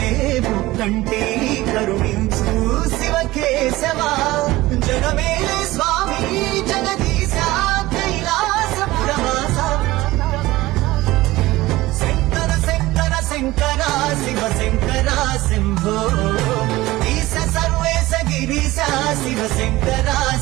ముక్కంటి కరుణించు శివ కేశవ జగమేలే స్వామి జగదీశ కైలాసపురవాస శంకర శంకర శంకర శివ శంకర శంభో ఈశ సర్వేశ గిరీశ శివ శంకర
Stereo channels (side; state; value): left; quieter; 18.4 dB